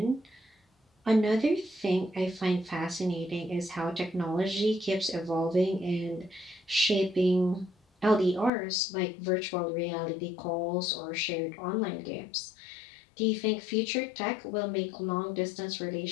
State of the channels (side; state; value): right; drops out; at 8.5 s